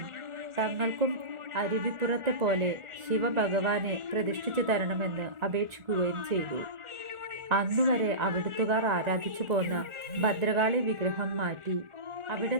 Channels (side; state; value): left; late; 1.4 ms